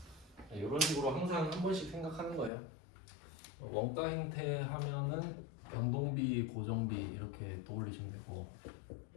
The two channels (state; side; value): drops out; right; at 2.5 s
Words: 이런 식으로 항상 한 번씩 생각하는 거예요. 원가 행태 하면은 변동비, 고정비 이렇게 떠올리시면 되고,